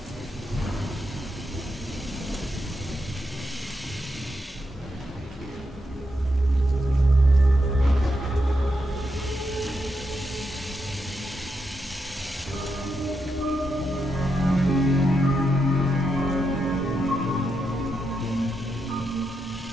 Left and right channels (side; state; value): both; normal; correlation 0.83